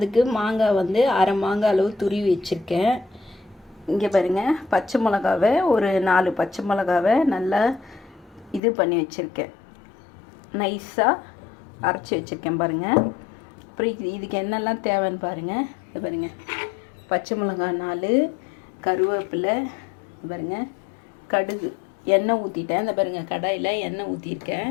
மாங்காய் வந்து அரை மாங்காய் அளவு துருவி வச்சுருக்கேன். இங்கே பாருங்கள், பச்சை மிளகாவை ஒரு 4 பச்சை மிளகாவை நல்லா இது பண்ணி வச்சுருக்கேன், நைஸாக அரைச்சி வச்சுருக்கேன் பாருங்கள். அப்புறம் இதுக்கு என்னெல்லாம் தேவைன்னு பாருங்கள். இது பாருங்கள், பச்சை மிளகாய் 4, கருவேப்பிலை பாருங்கள், கடுகு, எண்ணெய் ஊற்றிட்டேன். இந்த பாருங்கள், கடாயில் எண்ணெய் ஊற்றிருக்கேன்,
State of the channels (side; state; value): right; drops out; at 8.6 s